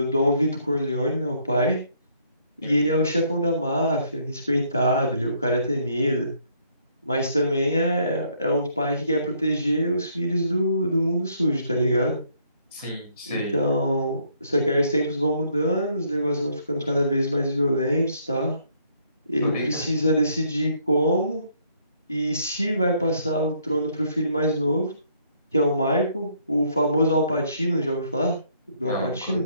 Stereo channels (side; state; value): both; inverted; correlation -0.68